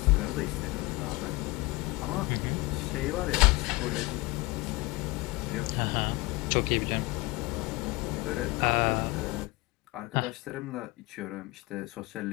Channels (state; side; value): quieter; right; 22.6 dB